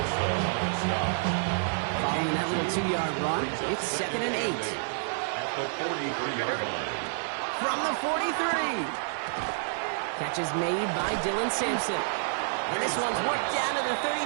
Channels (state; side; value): silent; left; digital silence